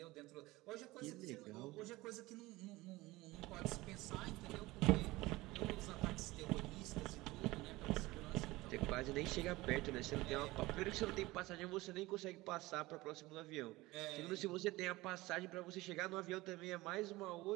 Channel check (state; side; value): quieter; left; 19.8 dB